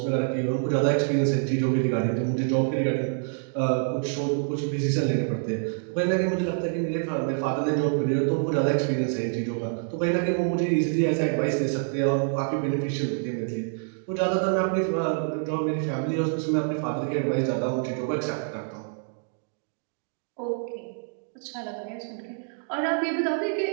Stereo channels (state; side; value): silent; left; digital silence